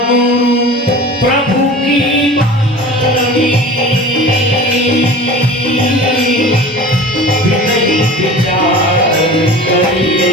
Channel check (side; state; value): both; normal; correlation 0.38